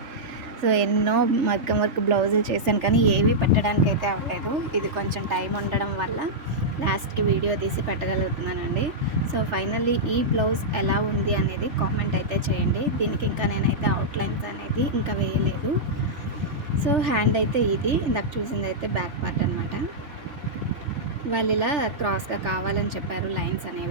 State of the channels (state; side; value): late; left; 3.3 ms